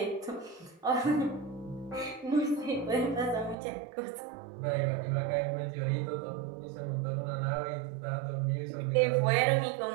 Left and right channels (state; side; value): drops out; left; at 3.6 s